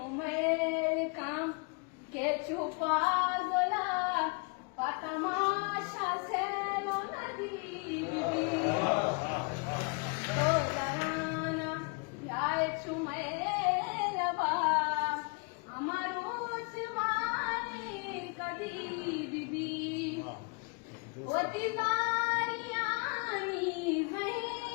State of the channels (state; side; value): quieter; right; 33.4 dB